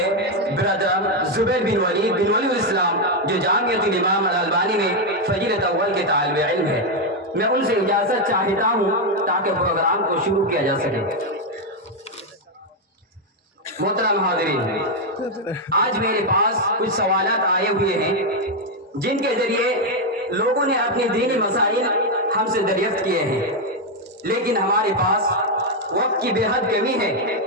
برادر زبیر بن ولی الاسلام، جو جامعۃ الامام الالبانی میں فضیلت اول کے طالب علم ہے۔ میں ان سے اجازت چاہتا ہوں تاکہ پروگرام کو شروع کیا جا سکے۔ محترم حاضرین، آج میرے پاس کچھ سوالات آئے ہوئے ہیں جن کے ذریعے لوگوں نے اپنی دینی مسائل ہم سے دریافت کیے ہیں، لیکن ہمارے پاس وقت کی بے حد کمی ہے،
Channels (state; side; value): normal; both; correlation 0.03